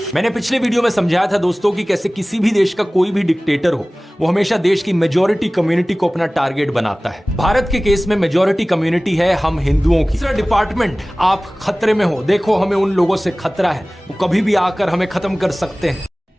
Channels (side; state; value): both; normal; correlation 0.98